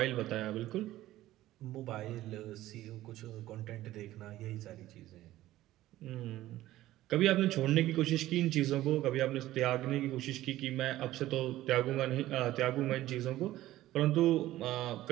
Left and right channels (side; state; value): left; quieter; 15.2 dB